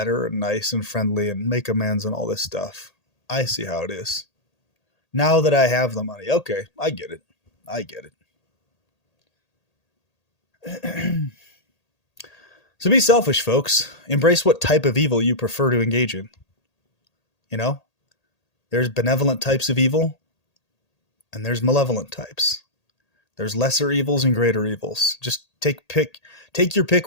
and nice and friendly and make amends and all this stuff. I see how it is. Now that I have the money. Okay, I get it. I get it. So be selfish, folks. Embrace what type of evil you prefer to engage in. You know? There's benevolent types of evil, and there's malevolent types. There's lesser evils and greater evils. Just take your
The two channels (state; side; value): late; right; 1.8 ms